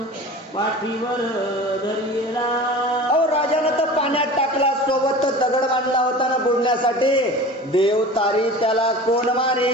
दगड बांधला होता ना बुडण्यासाठी, देव तारी त्याला कोण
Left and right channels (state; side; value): normal; both; correlation 0.37